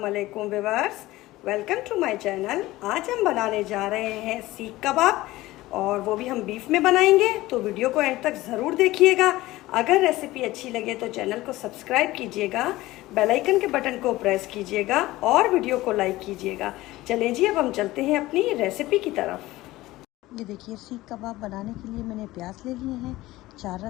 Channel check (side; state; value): right; quieter; 17.8 dB